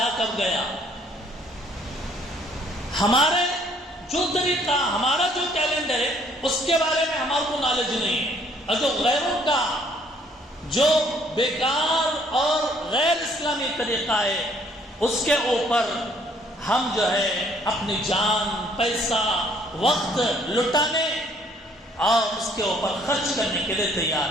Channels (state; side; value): normal; both; correlation 0.62